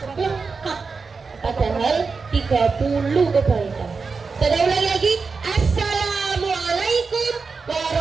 lengkap, padahal 30 kebaikan. Saya ulangi lagi. Assalamualaikum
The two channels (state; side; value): quieter; left; 4.7 dB